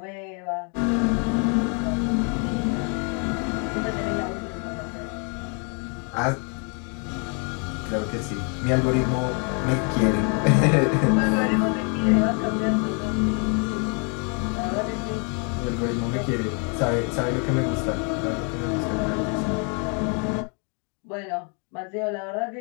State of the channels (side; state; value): right; quieter; 37.5 dB